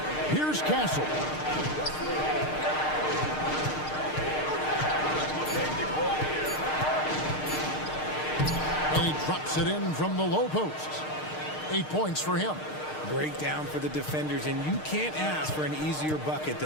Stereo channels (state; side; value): late; right; 6.5 ms